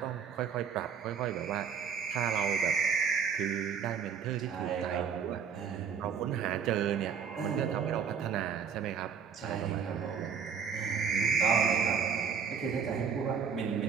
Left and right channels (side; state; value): left; quieter; 6.7 dB